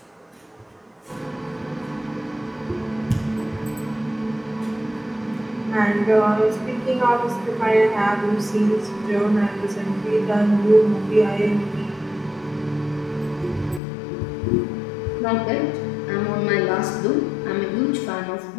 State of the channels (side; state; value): right; drops out; at 13.8 s